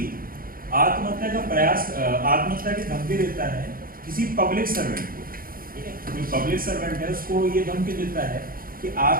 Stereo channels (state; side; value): late; left; 0.42 ms